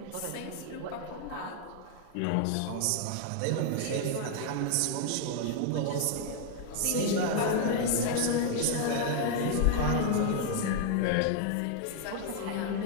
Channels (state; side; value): different; both; correlation 0.00